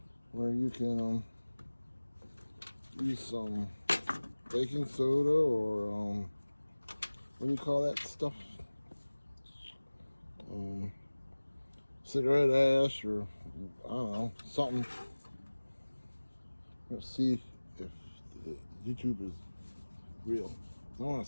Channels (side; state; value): both; inverted; correlation -1.00